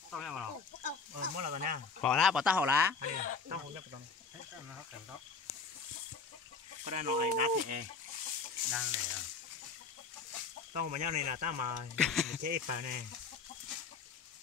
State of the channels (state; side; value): quieter; right; 5.0 dB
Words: Tao nghe mà nó. Mới là tao nha. Họ lá bỏ ta họ lá. Tao không nhớ tao. Hết nó hấp kèm đó. Có đây nó này đá thì Đang này à. tao mà nhau này là tao mà chế phải nè.